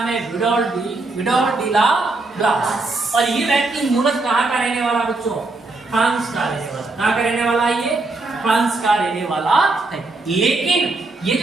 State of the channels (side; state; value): left; quieter; 3.3 dB